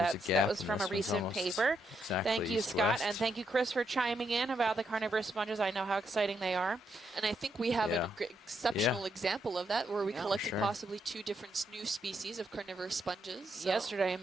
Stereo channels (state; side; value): normal; both; correlation 0.79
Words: a that gap, was and from this a one's recent almost paper. exactly Thank you, Scott, east-west. and thank you, Chris, for chiming in about the carnivorous sponges. I know how exciting they are. And I think we have Yeah. an exceptional example of that, where we Yeah, collected sure. possibly 2 different new species of carnivorous sponges. So. Yesterday, and